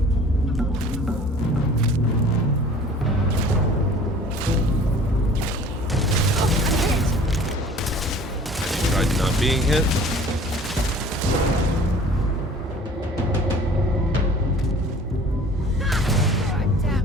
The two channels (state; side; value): normal; both; correlation 0.47